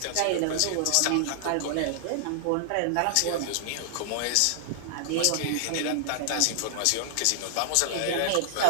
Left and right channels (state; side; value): different; both; correlation -0.01